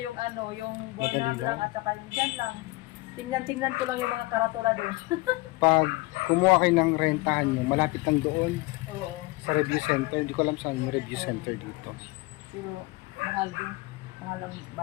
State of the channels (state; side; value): quieter; right; 22.3 dB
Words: ano, yung Burnham Madali lang lang. at saka yung dyan lang. Tingnan ko lang yung mga karatula doon. Pag kumuha kayo ng rentahan nyo, malapit lang doon Oo. sa review center. Hindi ko alam saan yung review center dito. Pero mahal din. Mahal ang